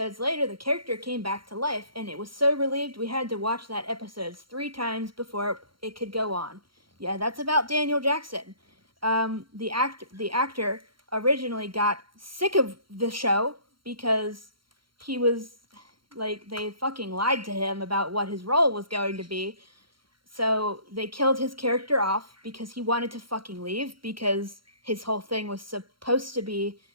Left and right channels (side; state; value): left; late; 0.73 ms